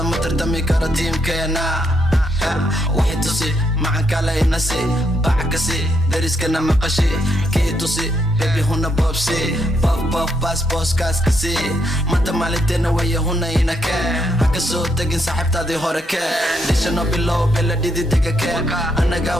tardami karo tiimkeena waxay tusi macan kale inasi bacakasi dariskana maqashi kii tusi bebi huna boobsi bof bas booskaaskasi manta maalinteena waya huna inake haka soo tegin saaxiibtaadii hore kee dhishano bilow bela dhididega kee anaga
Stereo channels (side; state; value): both; normal; correlation 0.76